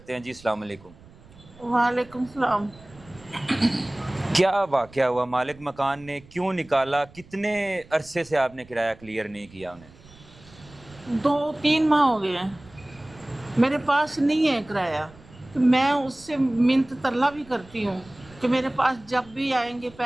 ہیں۔ جی السلام علیکم۔ وعلیکم السلام۔ کیا واقعہ ہوا؟ مالک مکان نے کیوں نکالا؟ کتنے عرصے سے آپ نے کرایہ کلیئر نہیں کیا انہیں؟ 2-3 ماہ ہو گئے ہیں، میرے پاس نہیں ہے کرایہ، تو میں اس سے منت ترلا بھی کرتی ہوں کہ میرے پاس جب بھی آئیں گے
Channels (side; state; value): right; noise; rumble, 23 dB below the sound